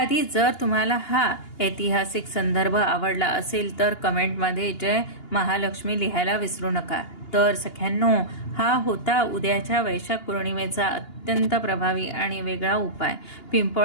जर तुम्हाला हा ऐतिहासिक संदर्भ आवडला असेल तर कमेंटमध्ये जय महालक्ष्मी लिहायला विसरू नका. तर सख्यांनो, हा होता उद्याच्या वैशाख पौर्णिमेचा अत्यंत प्रभावी आणि वेगळा उपाय.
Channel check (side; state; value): right; late; 2.8 ms